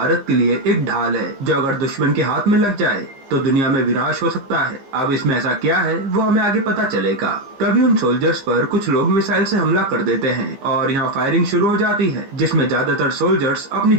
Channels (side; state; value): left; late; 15 ms